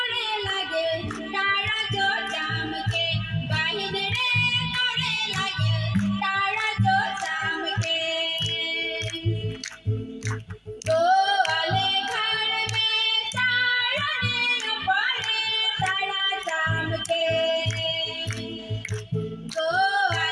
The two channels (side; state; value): both; identical; correlation 1.00